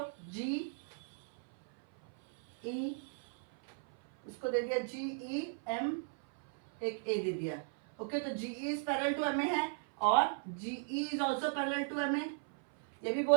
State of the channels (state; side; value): silent; left; 53 dB below the other